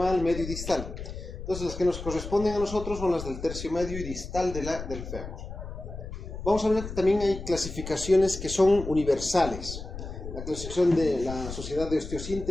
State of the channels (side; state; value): left; noise; rumble, 9 dB below the sound